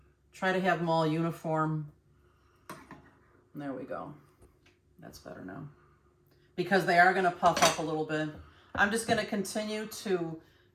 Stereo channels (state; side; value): identical; both; correlation 1.00